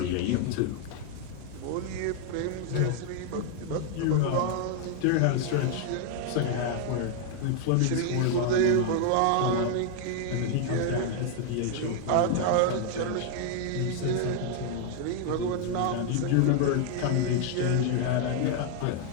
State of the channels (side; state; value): both; different; correlation 0.00